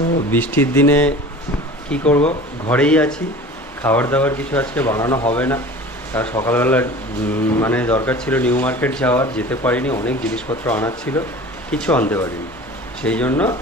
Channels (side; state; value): both; normal; correlation 0.40